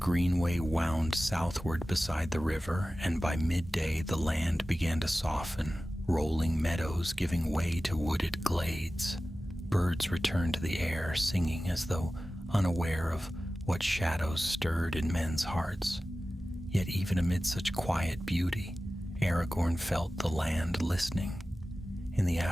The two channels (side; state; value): both; normal; correlation 0.95